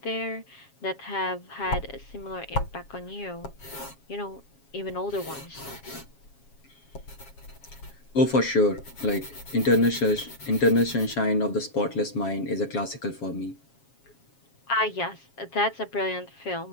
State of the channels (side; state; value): right; late; 7.3 ms